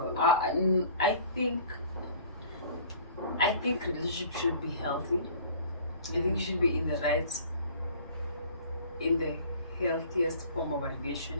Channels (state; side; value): inverted; both; correlation -0.48